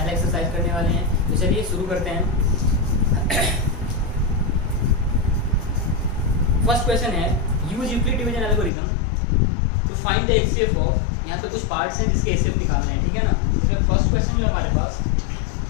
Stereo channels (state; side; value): drops out; right; at 8.7 s